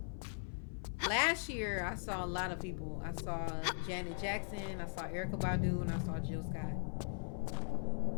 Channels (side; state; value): right; silent; 51 dB below the other